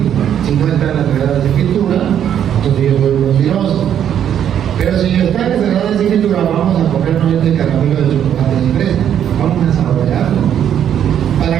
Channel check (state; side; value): quieter; left; 9.6 dB